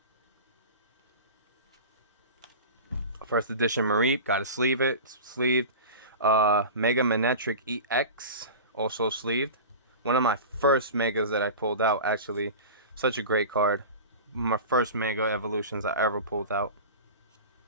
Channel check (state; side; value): inverted; both; correlation -0.32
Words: First edition Mareep, gotta sleeve it, sleeved. Mega Manectric EX, also sleeved. One of my first Megas that I pulled out, actually. Such a great card. My first Mega Evolutions I ever pulled out.